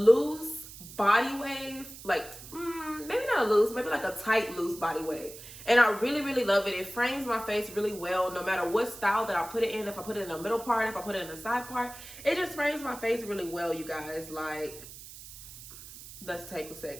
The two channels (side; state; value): right; noise; hiss, 15 dB below the sound